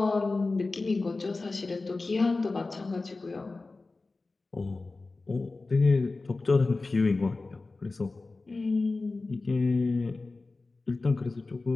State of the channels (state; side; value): quieter; right; 3.5 dB